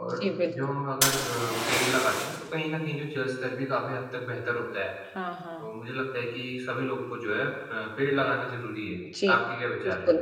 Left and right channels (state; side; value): identical; both; correlation 1.00